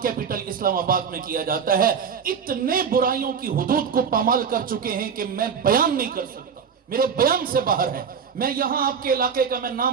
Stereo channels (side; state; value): left; quieter; 6.6 dB